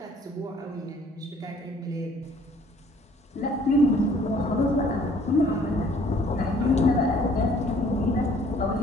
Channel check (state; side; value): normal; both; correlation 0.58